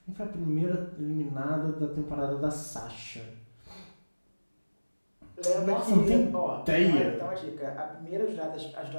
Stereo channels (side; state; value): both; inverted; correlation -1.00